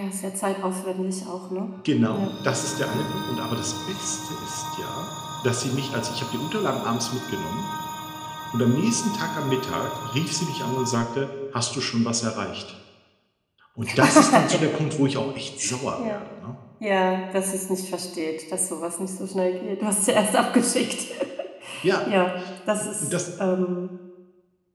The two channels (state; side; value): identical; both; correlation 1.00